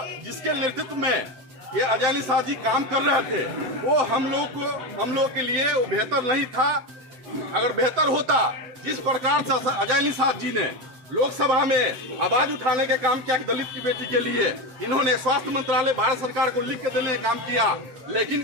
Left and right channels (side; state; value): left; late; 7.8 ms